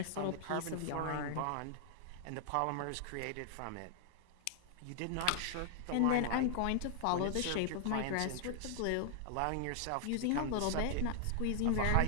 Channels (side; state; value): both; different; correlation -0.01